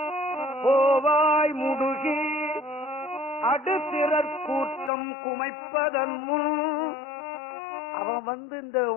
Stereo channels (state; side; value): drops out; right; at 4.9 s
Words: கோவாய் முடுகி அடுத்திறற் கூட்டம் குமைப்பதன் முன் அவன் வந்து இந்த